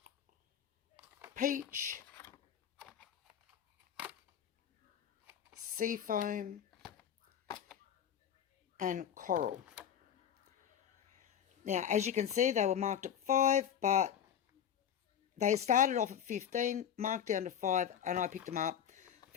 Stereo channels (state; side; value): quieter; right; 9.1 dB